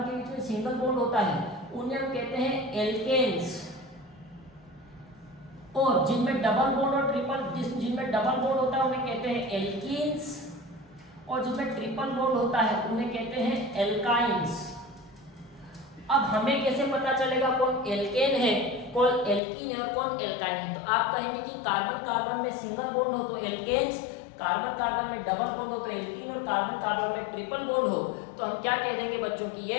के बीच में सिंगल बॉन्ड होता है, उन्हें हम कहते हैं एल्केन्स। और जिनमें डबल बॉन्ड और जिनमें डबल बॉन्ड होता है उन्हें कहते हैं एल्कीन्स, और जिनमें ट्रिपल बॉन्ड होता है उन्हें कहते हैं एल्काइन्स। अब हमें कैसे पता चलेगा कौन एल्केन है, कौन एल्कीन है और कौन एल्काइन है? तो आप कहेंगे कि कार्बन कार्बन में सिंगल बॉन्ड हो तो एल्केन्स, कार्बन कार्बन में डबल बॉन्ड हो तो एल्कीन, और कार्बन कार्बन में ट्रिपल बॉन्ड हो तो हम क्या कह देंगे बच्चों की ये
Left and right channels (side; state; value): right; drops out; at 19.4 s